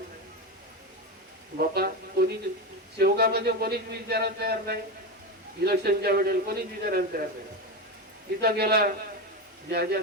बाबा कोणी सेवकामध्ये कोणीच विचारायला तयार नाही. इलेक्शनच्या वेळेला कोणीच विचारायला तयार नाही. तिथं गेला, ज्या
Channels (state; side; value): normal; both; correlation 0.17